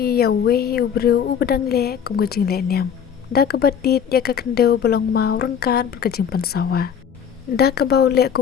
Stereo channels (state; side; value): quieter; right; 8.0 dB